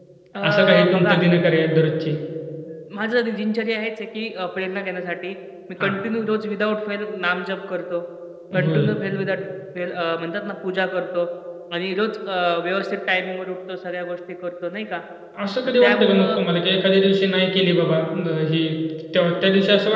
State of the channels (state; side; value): identical; both; correlation 1.00